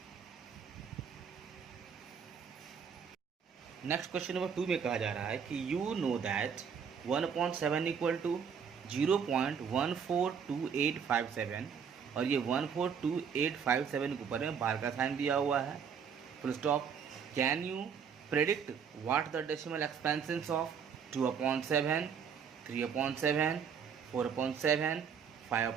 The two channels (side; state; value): left; quieter; 6.9 dB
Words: Next question number 2 में कहा जा रहा है कि you know that 1/7 equal to 0.142857 और ये 142,857 के ऊपर में बार का साइन दिया हुआ है, full stop. Can you predict what the decimal expansions of 2/7, 3/7, 4/7,